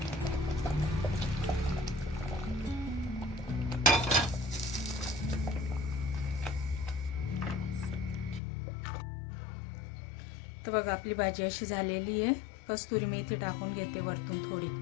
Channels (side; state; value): right; drops out; at 8.4 s